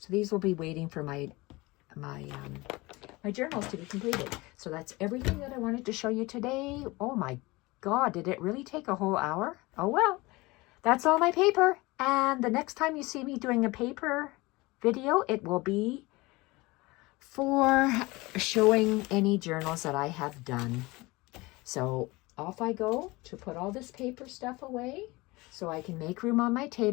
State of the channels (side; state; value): right; quieter; 22.4 dB